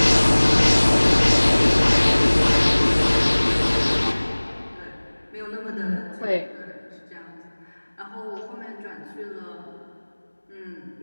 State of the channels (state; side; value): inverted; both; correlation -1.00